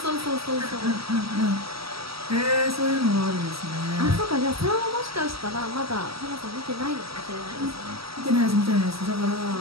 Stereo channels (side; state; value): left; late; 0.76 ms